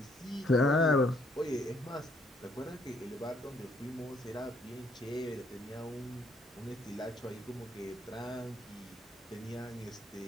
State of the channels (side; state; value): both; normal; correlation 0.67